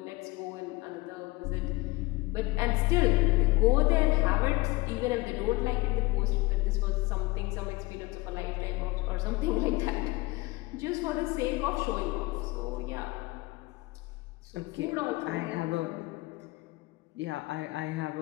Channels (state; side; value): quieter; right; 22.1 dB